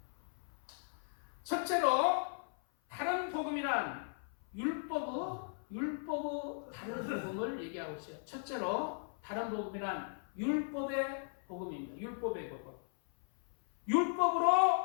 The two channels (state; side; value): silent; right; 53 dB below the other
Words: 첫째로 다른 복음이란 율법의 율법의 다른 복음을 얘기하고 있어요. 첫째로 다른 복음이란 율법의 복음입니다. 율법의 복음.